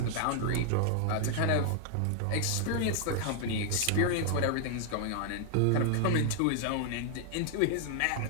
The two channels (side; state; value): both; different; correlation 0.00